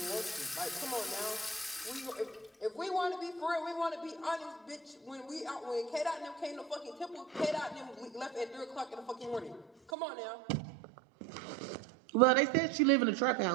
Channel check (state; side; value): drops out; left; at 9.9 s